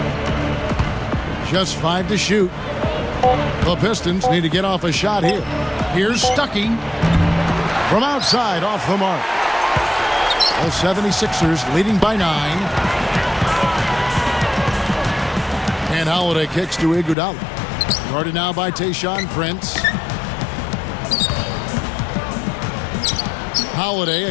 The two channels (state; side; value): drops out; right; at 17.2 s